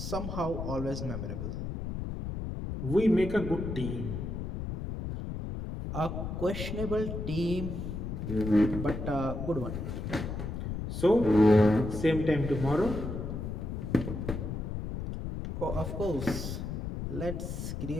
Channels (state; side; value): noise; left; rumble, 5 dB below the sound